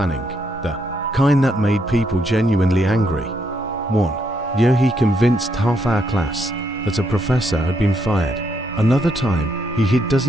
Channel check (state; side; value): normal; both; correlation 0.76